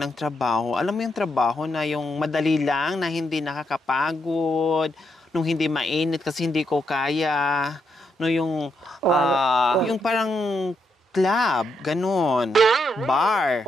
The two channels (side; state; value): both; normal; correlation 0.80